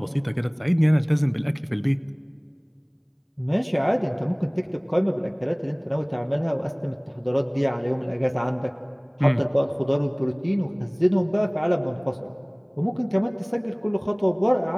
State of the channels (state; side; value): identical; both; correlation 1.00